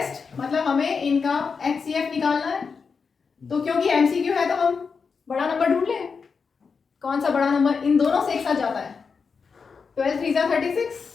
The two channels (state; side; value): quieter; right; 5.4 dB